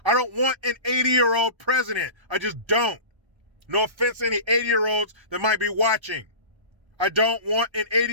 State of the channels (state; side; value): late; left; 1.3 ms